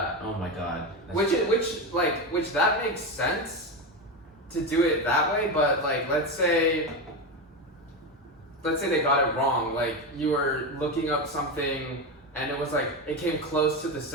Oh my god. Which that makes sense to do it that way, but like let's say they got it wrong. Like you were looking up something and it was like it came close to the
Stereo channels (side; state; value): both; normal; correlation 0.16